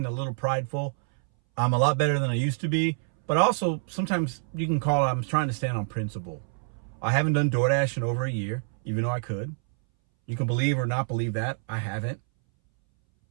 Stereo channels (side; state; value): left; silent; 60 dB below the other